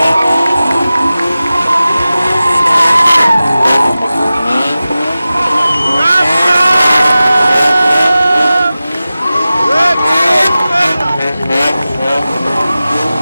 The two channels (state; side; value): inverted; both; correlation -0.96